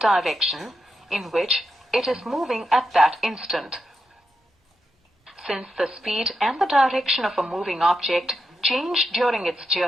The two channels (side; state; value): both; normal; correlation 0.85